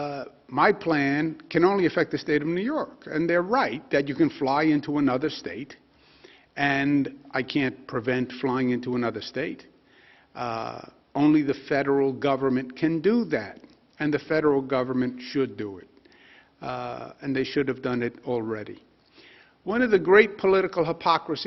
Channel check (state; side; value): identical; both; correlation 1.00